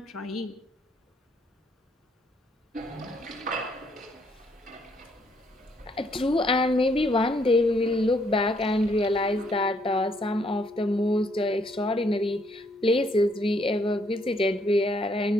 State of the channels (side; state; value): both; normal; correlation 0.70